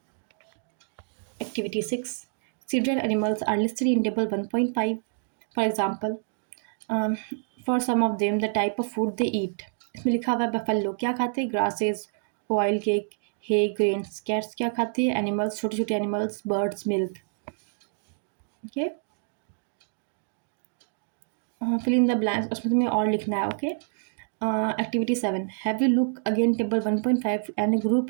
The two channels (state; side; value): silent; left; digital silence